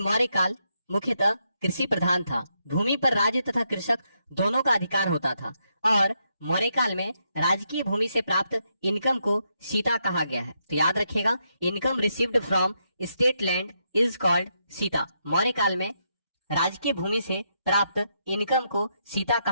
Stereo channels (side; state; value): both; inverted; correlation -0.80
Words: मौर्य काल मुख्यतः कृषि प्रधान था। भूमि पर राज्य तथा कृषक दोनों का अधिकार होता था और मौर्य काल में राजकीय भूमि से प्राप्त इनकम को सीता कहा गया है। तो याद रखिएगा, income received from state land is called Sita. Maurya काल में राजकीय भूमि से प्राप्त इनकम को सीता